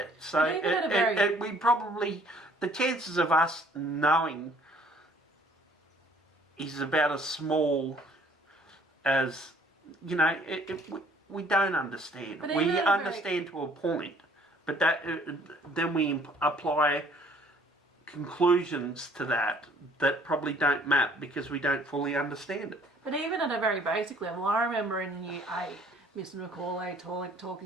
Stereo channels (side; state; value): both; normal; correlation 0.58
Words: So we probably, the chances of us knowing is about as small as, we don't understand. We understand to a point, but then we apply conclusions to that probably don't map because we don't fully understand it. But even at a very basic level, I remember in year 8, Mr. Macaulay